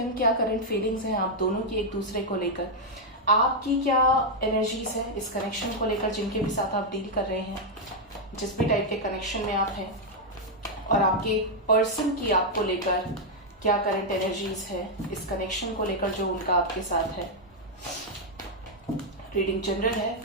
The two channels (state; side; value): normal; both; correlation -0.02